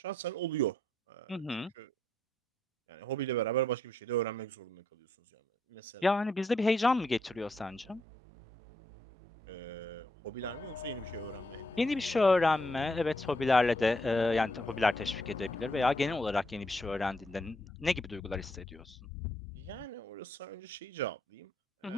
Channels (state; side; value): normal; both; correlation 0.76